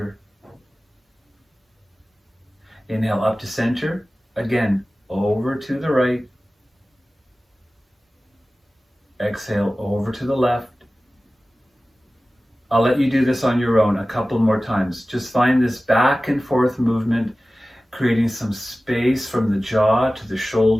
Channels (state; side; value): normal; both; correlation 0.96